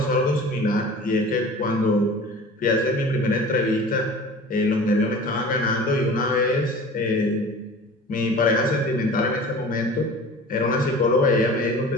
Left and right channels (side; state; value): both; normal; correlation 0.40